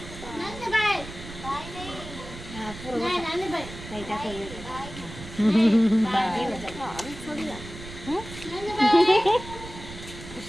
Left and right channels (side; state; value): right; noise; rumble, 13 dB below the sound